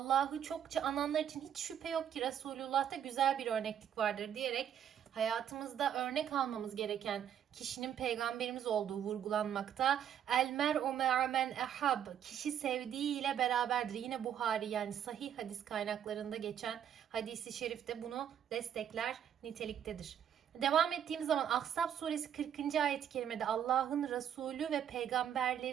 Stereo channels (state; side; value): quieter; left; 9.3 dB